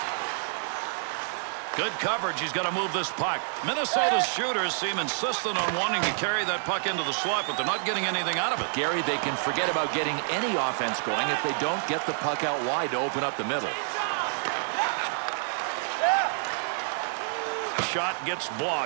Good coverage. He's got to move this puck. Minnesota's shooters seem insistent on wanting to carry that puck into the slot, but they're not getting anything out of it. Gary, they can forget about getting any offense going if they don't get the puck out wide to open up the middle. Shot gets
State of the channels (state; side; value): silent; left; digital silence